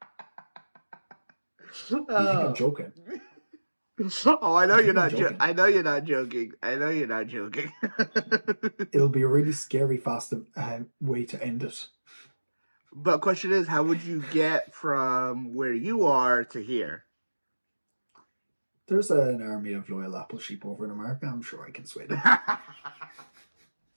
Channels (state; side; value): inverted; both; correlation -1.00